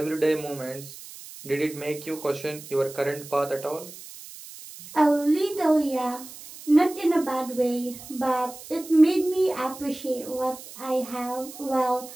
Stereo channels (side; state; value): right; noise; hiss, 16 dB below the sound